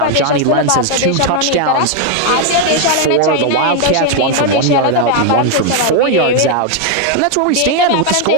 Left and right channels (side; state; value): both; different; correlation 0.00